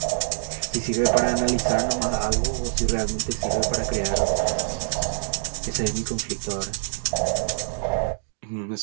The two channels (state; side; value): silent; left; digital silence